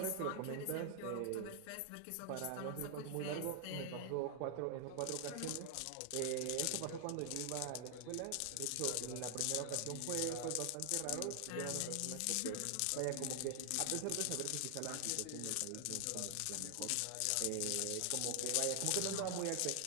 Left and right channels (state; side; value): different; both; correlation 0.00